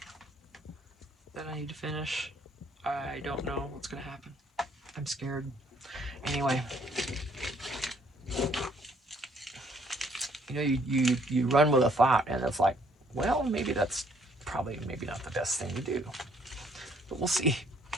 that I need to finish? I don't know what's gonna happen. I'm scared. Anyway, you know, you run with a thought, and it's like, well, maybe that's probably maybe not the best thing to do, but we'll see.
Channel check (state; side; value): normal; both; correlation 0.64